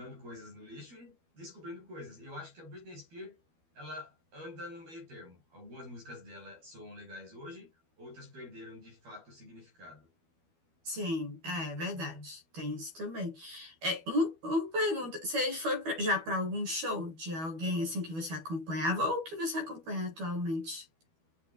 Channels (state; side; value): late; left; 12 ms